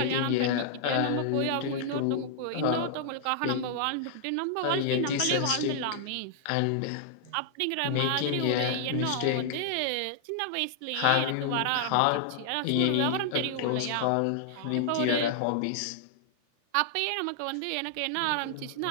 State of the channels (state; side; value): different; both; correlation -0.01